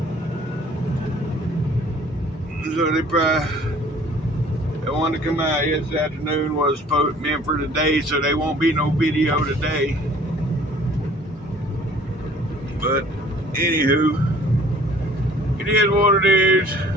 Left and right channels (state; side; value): normal; both; correlation 0.53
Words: So they wanted to come out yesterday afternoon, was meant for today, so there won't be no video today. But anywho, it is what it is.